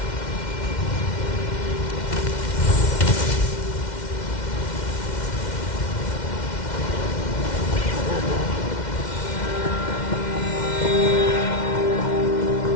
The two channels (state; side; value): late; right; 2.1 ms